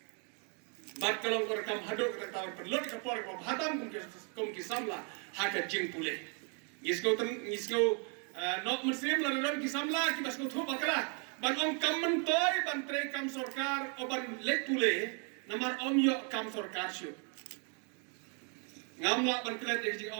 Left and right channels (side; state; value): left; quieter; 39.0 dB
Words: bat kalong keberangkam hadok kata-kata perlu kapor hatam kum ki samla haka jing pule ngisko nok muslim la ron ki samla ki basko thu bakala ban om kam mentoy ban tre kam sarkar o ban lek pule namar om yo kam sarkar syu ngamla ban klet ek jing